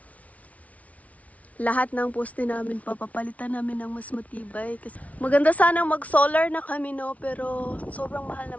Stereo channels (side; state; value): right; late; 0.068 ms